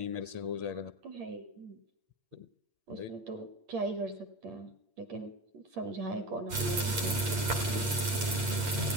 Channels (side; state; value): left; late; 8.7 ms